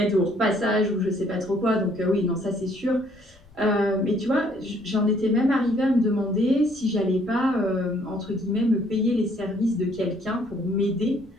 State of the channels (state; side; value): noise; left; rumble, 28 dB below the sound